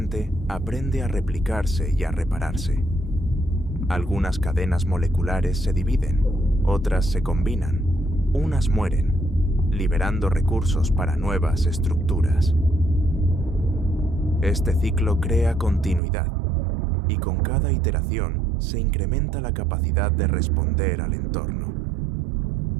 aprende a replicarse y a repararse. Algunas cadenas moleculares se dividen, otras se combinan, unas mueren, liberando recursos para nuevas estructuras. Este ciclo crea continuidad, y con cada iteración se incrementa la capacidad de responder al entorno.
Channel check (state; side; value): drops out; left; at 16.0 s